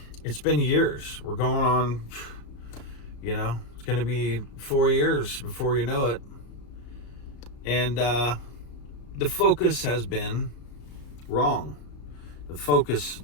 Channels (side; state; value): right; late; 34 ms